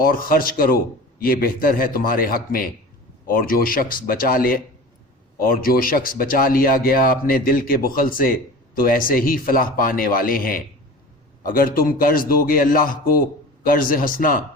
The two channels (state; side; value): normal; both; correlation 0.37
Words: خرچ کرو، یہ بہتر ہے تمہارے حق میں۔ اور جو شخص بچا لیا گیا اپنے دل کے بخل سے، تو ایسے ہی فلاح پانے والے ہیں۔ اگر تم قرض دو گے اللہ کو قرض حسنا،